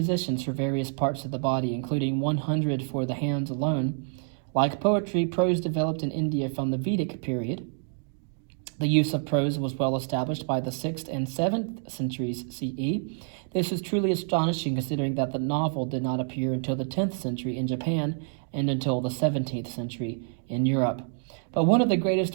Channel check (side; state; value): left; silent; 56 dB below the other